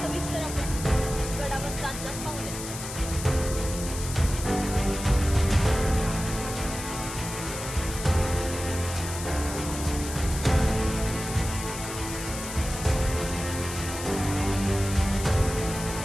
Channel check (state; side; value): noise; left; hiss, 9 dB below the sound